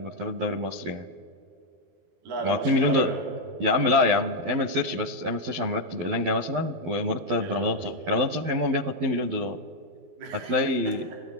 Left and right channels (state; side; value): late; left; 12 ms